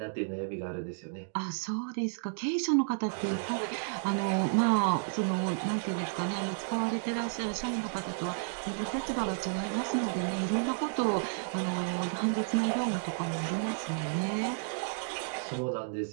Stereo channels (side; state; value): left; silent; digital silence